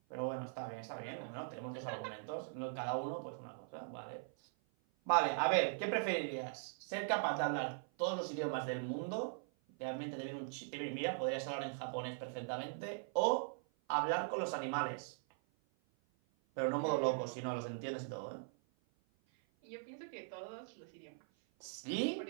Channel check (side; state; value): left; silent; 51 dB below the other